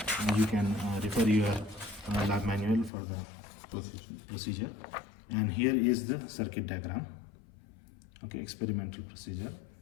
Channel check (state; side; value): drops out; right; at 2.9 s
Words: You can refer your lab manual for the procedure. And here is the circuit diagram. Okay, experimental procedure.